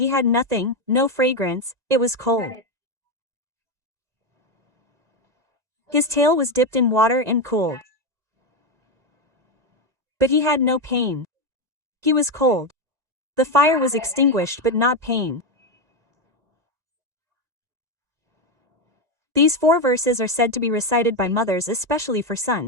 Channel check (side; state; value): left; late; 1.9 ms